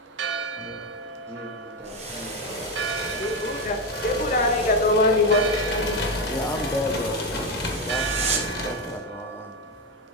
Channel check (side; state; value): both; normal; correlation 0.12